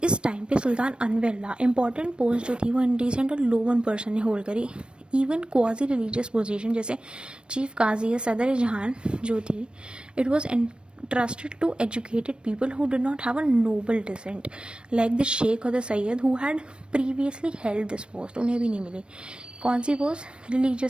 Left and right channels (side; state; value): left; late; 0.056 ms